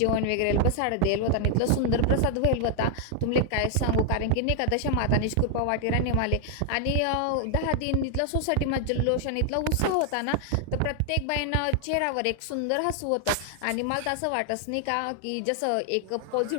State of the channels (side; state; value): both; different; correlation 0.00